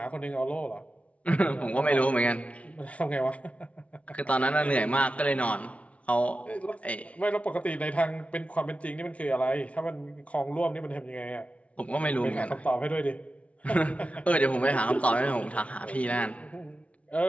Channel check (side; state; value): right; late; 0.064 ms